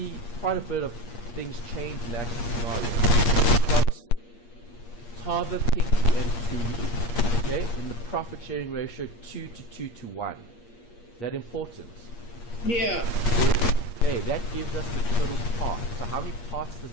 quite a bit of things change in that scenario. We've got Tava, Pinky, and Tui, okay, in the profit sharing ratio 2 to 2 to 1. Is that important? Yeah. Okay, that gives us the total parts. So how many parts does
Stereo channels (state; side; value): late; right; 8.5 ms